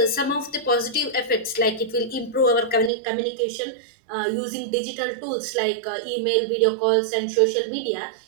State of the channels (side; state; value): left; drops out; at 2.9 s